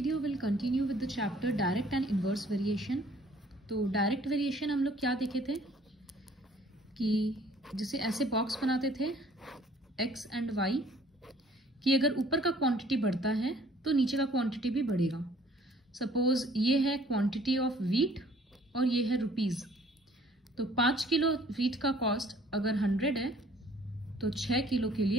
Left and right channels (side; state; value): both; normal; correlation 0.57